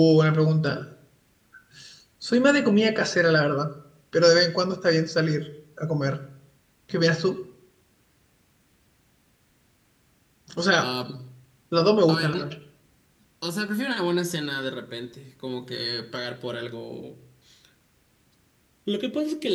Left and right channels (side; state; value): both; identical; correlation 1.00